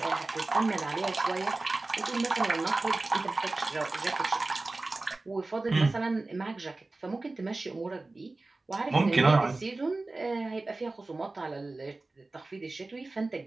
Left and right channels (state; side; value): quieter; left; 3.2 dB